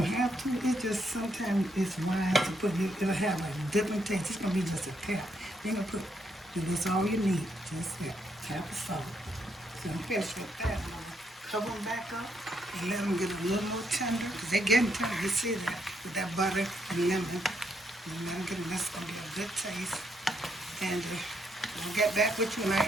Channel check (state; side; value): normal; both; correlation 0.76